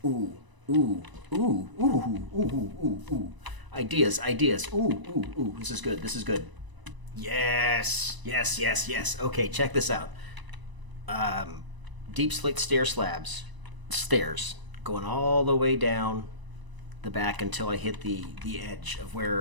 ooh, ooh, ooh, ooh, ooh, ooh, ooh. Ideas, ideas. Ooh, ooh, ooh. This is good. This is good. Yes, yes, yes, yes. Okay, check this out. Deep slate stair slabs, stairs going all the way down the back until I hit the edge of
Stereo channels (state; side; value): late; left; 1.0 ms